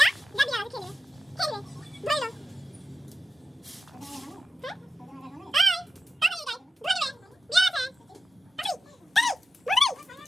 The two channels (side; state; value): both; normal; correlation 0.92